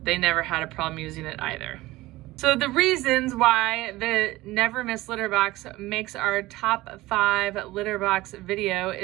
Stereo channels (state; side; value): quieter; left; 18.5 dB